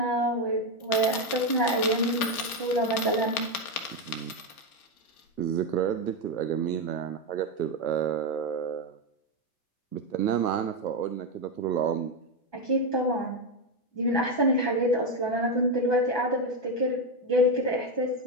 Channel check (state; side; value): late; right; 1.2 ms